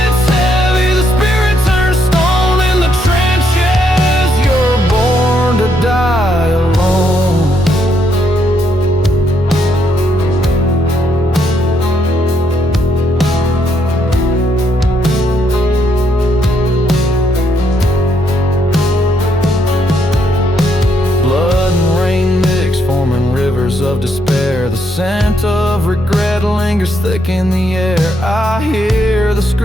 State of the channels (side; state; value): both; normal; correlation 0.75